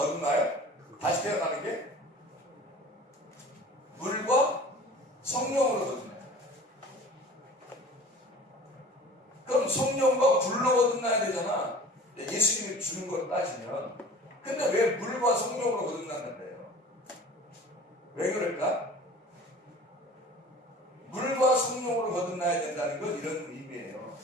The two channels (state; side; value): normal; both; correlation 0.43